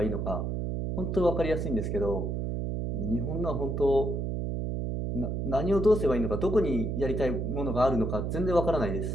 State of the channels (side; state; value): right; noise; hum, 1 dB below the sound